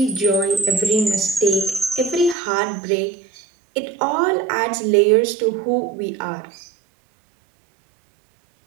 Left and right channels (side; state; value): left; drops out; at 2.4 s